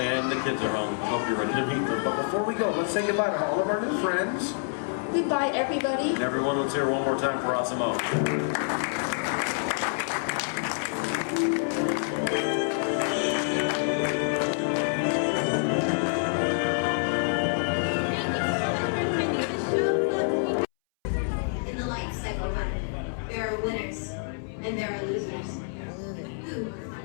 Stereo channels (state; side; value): silent; right; 60 dB below the other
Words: the kids are home. I hope you're ready to meet them. But before we go, let's say goodbye to all of our new friends. Goodbye, everybody. And everyone, let's hear one more time for Osimo. In the life cycle, there are winners and there are losers. Who